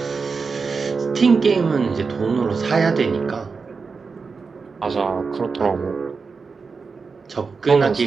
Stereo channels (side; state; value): left; quieter; 4.8 dB